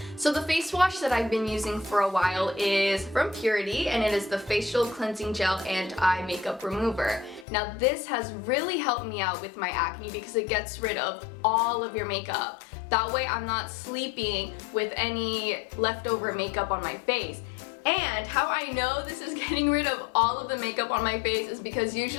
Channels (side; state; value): right; drops out; at 7.5 s